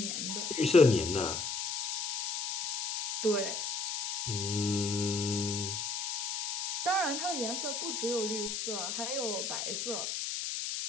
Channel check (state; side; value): noise; left; hiss, 2 dB below the sound